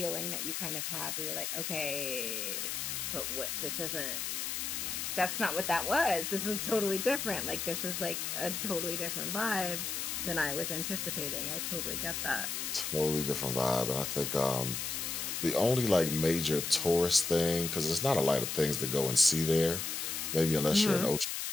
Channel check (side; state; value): left; noise; hiss, 3 dB below the sound